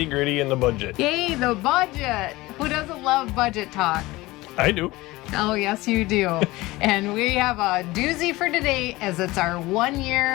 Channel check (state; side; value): quieter; right; 19.8 dB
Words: gritty and the budget. Yay, the budget. Who doesn't love budget talk? I do. Oh, yes, you do. And we have a doozy for today as it's our 1